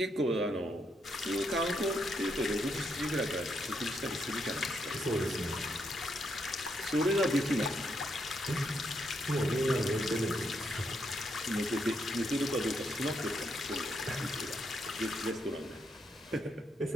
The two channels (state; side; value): normal; both; correlation 0.78